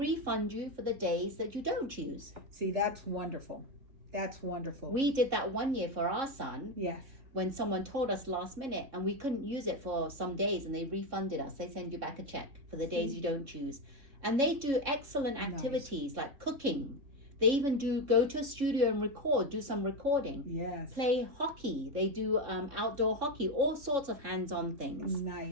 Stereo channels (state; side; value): late; left; 3.6 ms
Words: you for the days that you don't use. See, that's wonderful. That's wonderful. We did that one year for our son. Yes. When someone told us last minute and we couldn't use it for some days, and they refunded us. They send you back a check for the days you don't choose. And they do excellent activities like cooking. They even go to a studio and do some recording. Yes. Play hockey. They do outdoor hockey, all sorts of hands-on things.